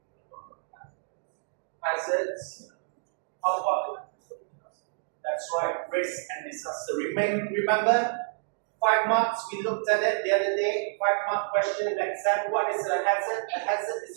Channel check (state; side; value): silent; left; digital silence